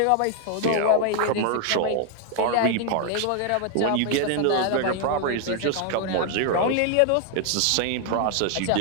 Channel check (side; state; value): both; different; correlation 0.00